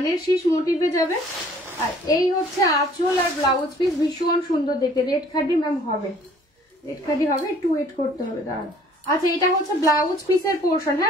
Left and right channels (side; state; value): both; normal; correlation 0.56